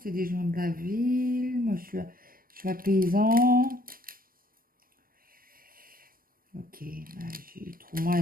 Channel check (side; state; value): left; late; 0.41 ms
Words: C'est des gens de la ville. Moi, je suis paysan. Ok, bah, trouve-moi